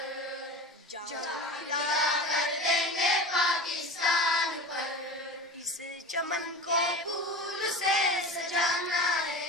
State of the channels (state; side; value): normal; both; correlation 0.31